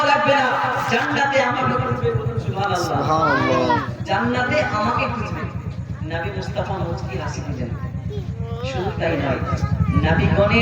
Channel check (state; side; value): identical; both; correlation 1.00